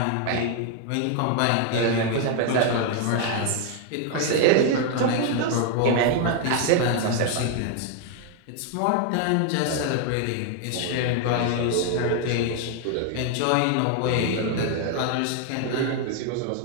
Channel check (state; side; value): different; both; correlation 0.00